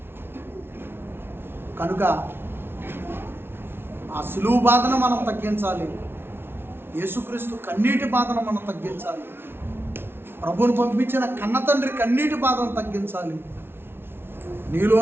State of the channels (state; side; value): late; left; 0.11 ms